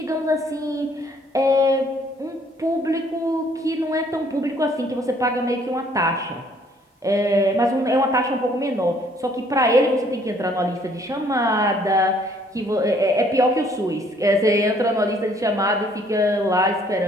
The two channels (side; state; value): both; normal; correlation 0.62